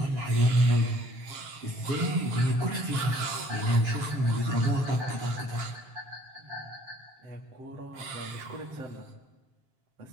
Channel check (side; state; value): left; late; 7.5 ms